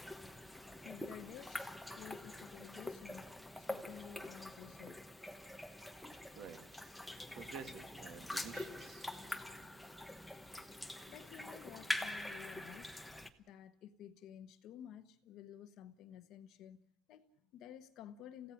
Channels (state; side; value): normal; both; correlation 0.86